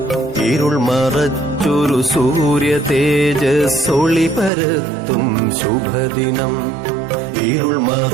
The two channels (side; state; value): left; drops out; at 4.5 s